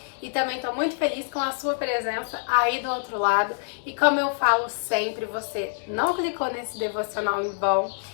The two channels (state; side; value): silent; right; digital silence